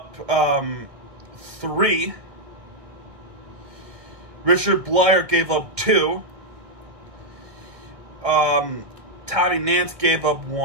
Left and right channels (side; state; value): left; late; 1.8 ms